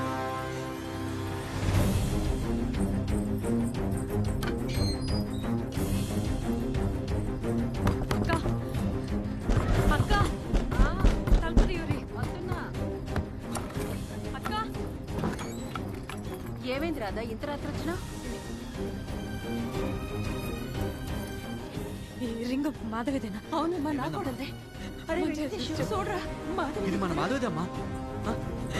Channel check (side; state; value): both; identical; correlation 1.00